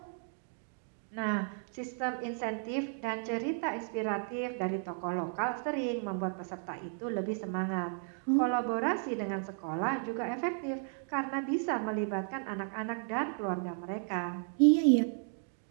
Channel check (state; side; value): silent; left; 55 dB below the other